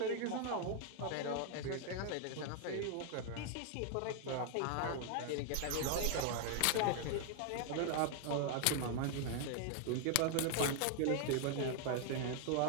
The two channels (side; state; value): both; different; correlation 0.00